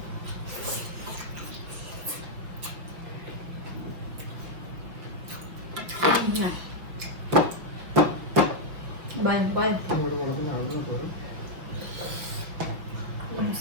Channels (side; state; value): left; late; 6.1 ms